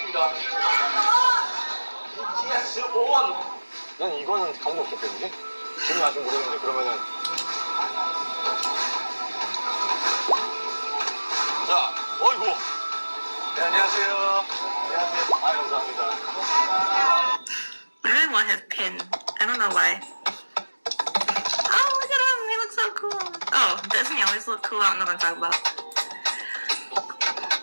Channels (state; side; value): inverted; both; correlation -1.00